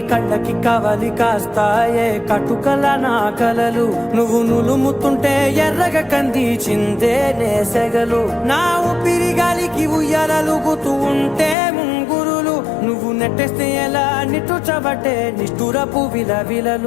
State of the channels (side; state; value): right; drops out; at 11.6 s